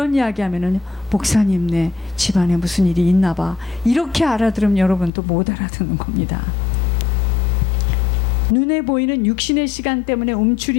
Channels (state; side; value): drops out; right; at 5.1 s